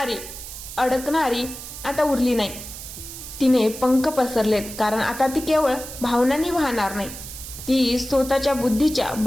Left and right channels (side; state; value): right; noise; hiss, 11 dB below the sound